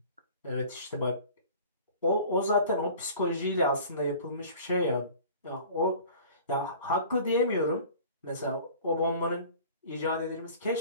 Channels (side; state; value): both; inverted; correlation -0.45